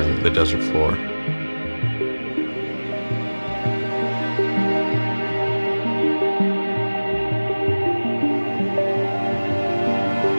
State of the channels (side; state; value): both; inverted; correlation -1.00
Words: the desert floor.